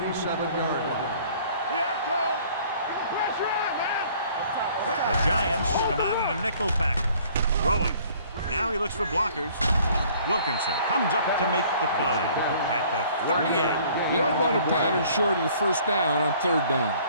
37-yard line. Yeah, Cole. Get the pressure on, man. The Giants come out in a nickel package. Throwing. Now he looks for blockers. Wilkinson comes up to make the play at the 38. You don't run a pattern short of the first down on third down.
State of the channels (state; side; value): inverted; both; correlation -0.56